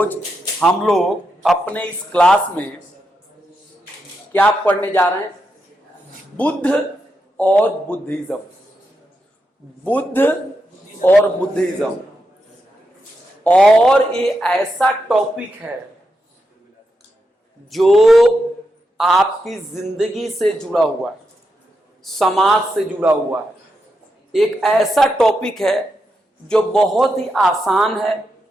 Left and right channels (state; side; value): normal; both; correlation 0.85